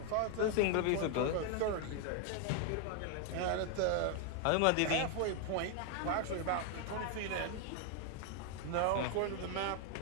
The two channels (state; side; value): different; both; correlation 0.01